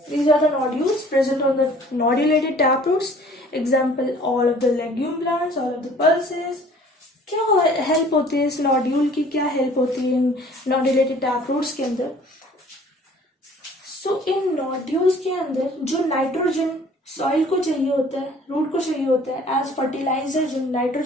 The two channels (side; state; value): both; normal; correlation 0.52